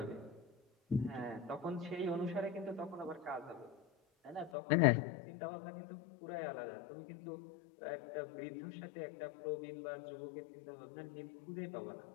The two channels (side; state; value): right; drops out; at 4.5 s